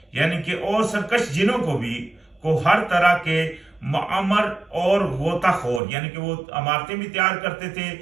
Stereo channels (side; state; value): left; drops out; at 5.8 s